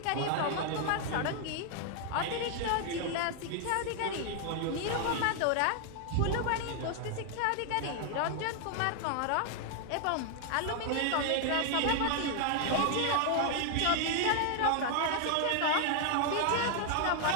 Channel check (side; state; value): both; different; correlation 0.00